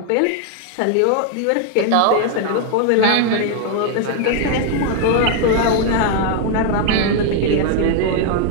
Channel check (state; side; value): different; both; correlation 0.00